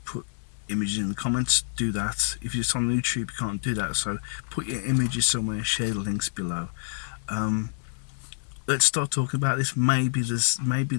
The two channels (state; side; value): silent; right; 60 dB below the other